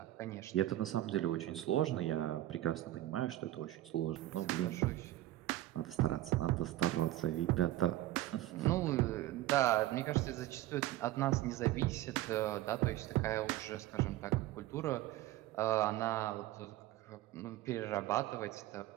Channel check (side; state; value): left; quieter; 15.2 dB